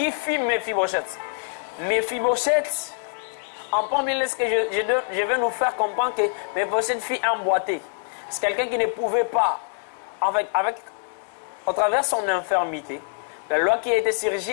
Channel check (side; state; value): right; silent; digital silence